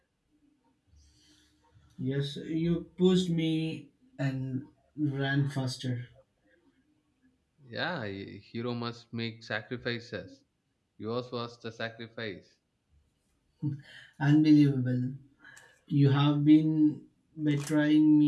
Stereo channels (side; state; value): both; identical; correlation 1.00